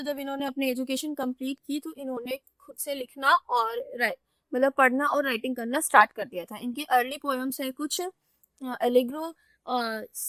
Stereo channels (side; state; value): both; identical; correlation 1.00